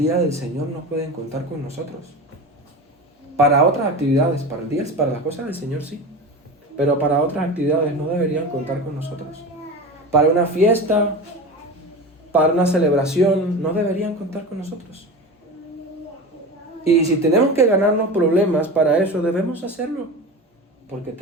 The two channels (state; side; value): normal; both; correlation 0.28